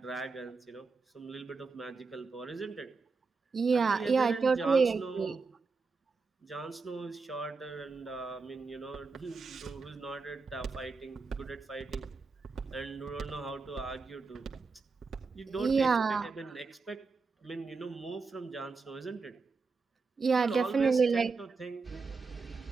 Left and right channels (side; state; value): left; quieter; 4.5 dB